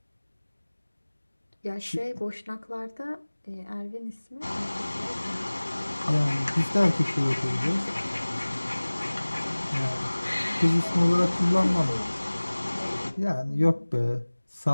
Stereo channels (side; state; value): both; inverted; correlation -1.00